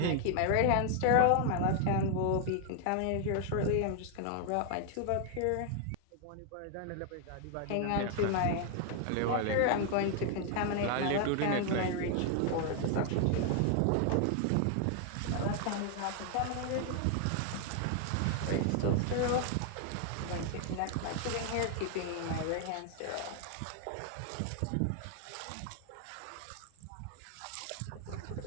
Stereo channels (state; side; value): different; both; correlation 0.00